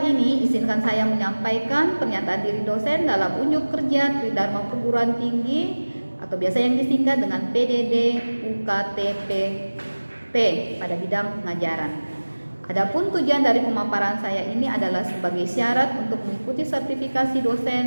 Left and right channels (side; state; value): both; inverted; correlation -1.00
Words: ini, izinkan saya menyampaikan pernyataan diri dosen dalam unjuk kerja Tridharma Perguruan Tinggi atau biasa yang disingkat dengan PDD UKTPP pada bidang pengajaran. Adapun tujuan dari pemaparan saya ini adalah sebagai syarat untuk mengikuti sertifikasi